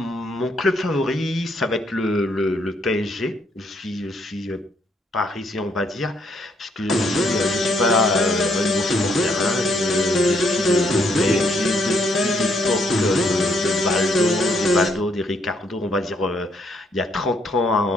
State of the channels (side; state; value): both; normal; correlation 0.72